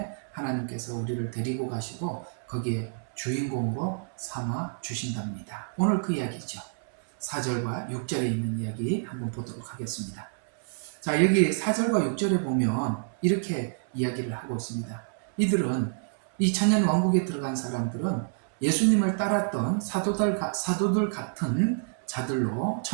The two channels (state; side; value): silent; left; 59 dB below the other